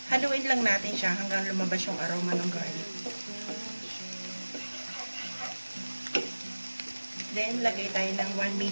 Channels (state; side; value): inverted; both; correlation -1.00